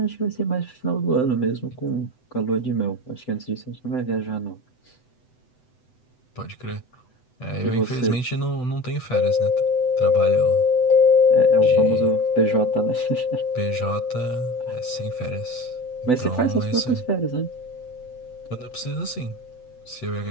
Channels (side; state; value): right; late; 7.9 ms